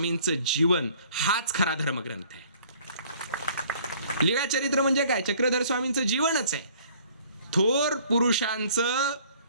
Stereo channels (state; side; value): inverted; both; correlation -0.56